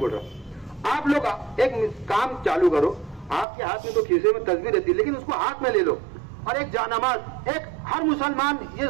रहा हूं। आप लोग एक काम चालू करो, आपके हाथ में तो खीसे में तस्वीर रहती है, लेकिन उसको हाथ में ले लो और एक जानमाज, एक हर मुसलमान ये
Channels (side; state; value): left; drops out; at 3.5 s